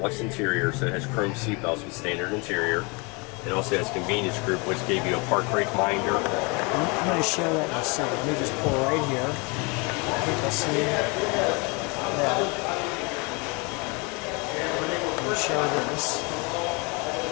interior, so it has chrome seatbelts with standard interior. It also has convenience group, which gave you a park brake minder. I'm going to show that in a second. Let me just pull right here. People see that. Let me show this.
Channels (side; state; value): right; quieter; 30.0 dB